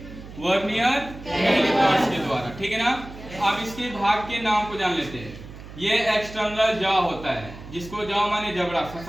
वर्नियर कैलिपर्स के द्वारा, ठीक है ना? अब इसके भाग के नाम को जान लेते हैं। ये एक्सटर्नल जॉ होता है, जिसको जॉ माने जबड़ा,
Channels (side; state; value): right; noise; hum, 15 dB below the sound